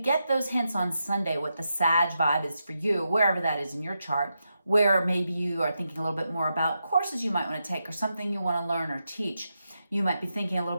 those hints on Sunday, what the Sag vibe is for you, wherever that is in your chart, where maybe you are thinking a little bit more about courses you might want to take or something you want to learn or teach. You might be thinking a little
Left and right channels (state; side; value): inverted; both; correlation -0.86